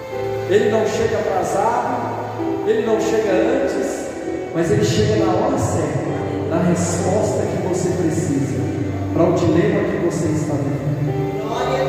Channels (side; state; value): both; identical; correlation 1.00